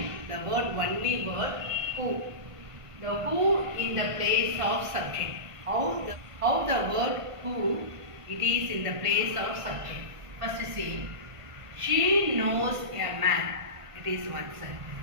the only word who. The who in the place of subject. How the word who it is in the place of subject. First see, she knows a man. It is one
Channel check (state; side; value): late; left; 1.5 ms